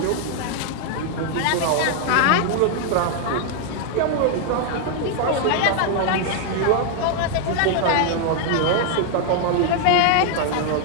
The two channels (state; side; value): different; both; correlation 0.00